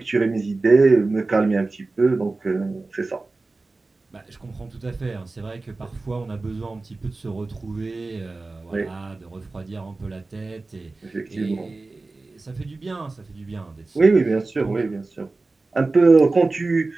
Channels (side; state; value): left; quieter; 3.5 dB